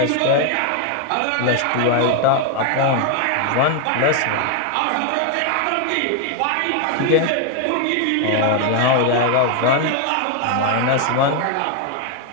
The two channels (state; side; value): different; both; correlation 0.00